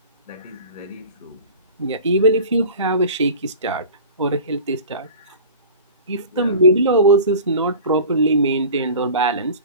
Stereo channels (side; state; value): both; inverted; correlation -0.39